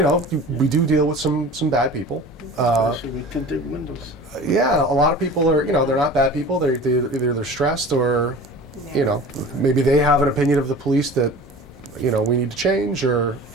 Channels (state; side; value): normal; both; correlation 0.39